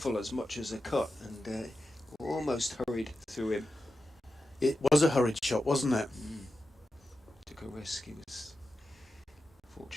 as much as a cut, and almost hurried through him. It was a hurried shot, wasn't it? Took a risk. He was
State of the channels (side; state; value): both; normal; correlation 0.91